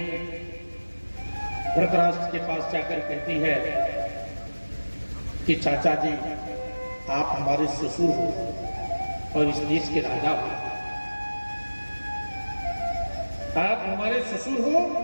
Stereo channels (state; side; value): inverted; both; correlation -1.00